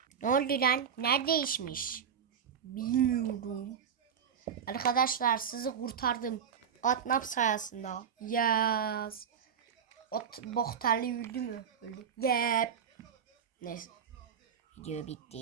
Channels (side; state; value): left; quieter; 7.5 dB